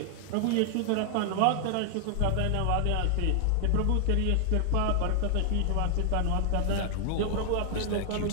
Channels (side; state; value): both; different; correlation 0.00